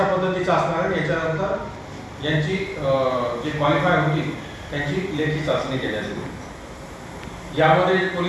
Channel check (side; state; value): both; identical; correlation 1.00